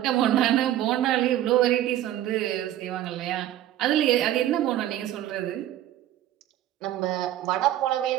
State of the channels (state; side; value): quieter; left; 12.9 dB